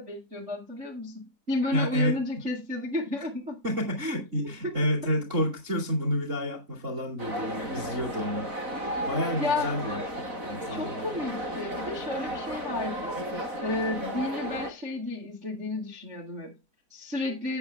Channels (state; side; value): late; left; 4.0 ms